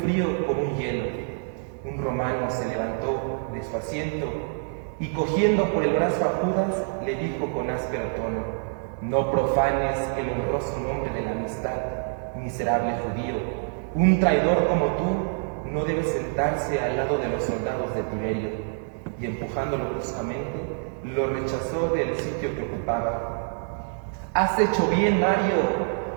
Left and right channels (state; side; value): silent; left; 61 dB below the other